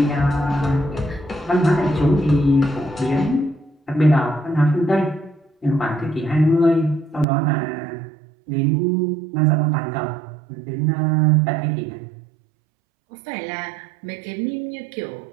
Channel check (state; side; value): drops out; left; at 7.2 s